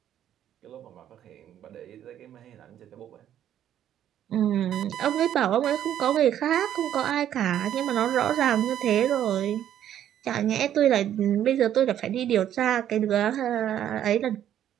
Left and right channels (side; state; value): left; quieter; 10.8 dB